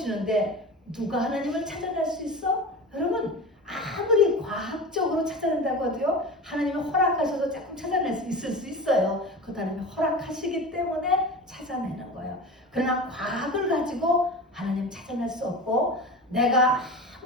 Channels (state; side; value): normal; both; correlation 0.31